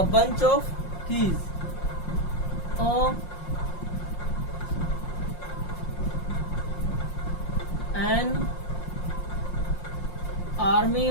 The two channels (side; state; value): right; late; 5.6 ms